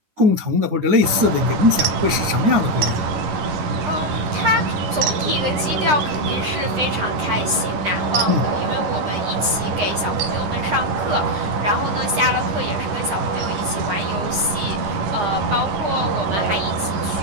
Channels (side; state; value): left; late; 9.9 ms